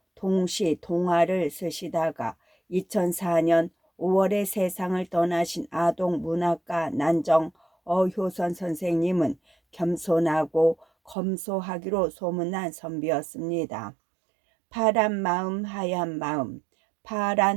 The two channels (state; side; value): drops out; left; at 11.2 s